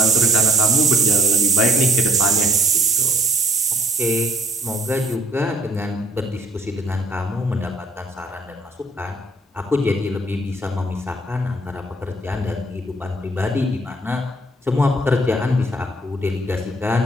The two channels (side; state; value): both; normal; correlation 0.60